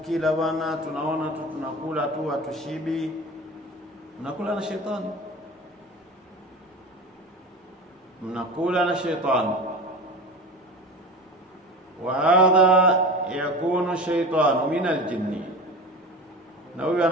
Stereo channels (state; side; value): normal; both; correlation 0.32